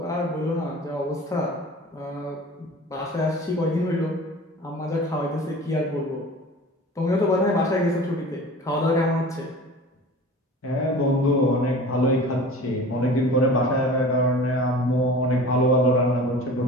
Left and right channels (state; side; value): normal; both; correlation 0.40